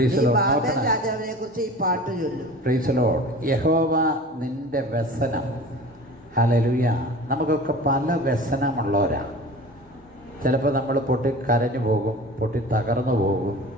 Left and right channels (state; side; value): normal; both; correlation 0.39